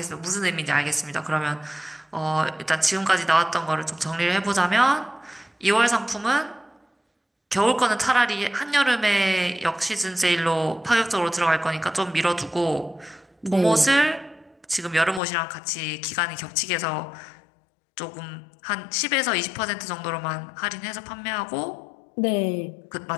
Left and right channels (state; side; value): drops out; right; at 15.2 s